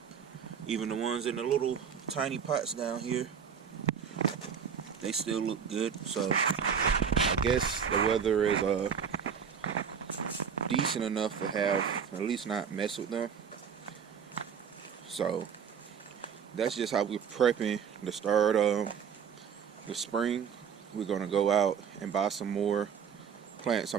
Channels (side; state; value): left; quieter; 7.2 dB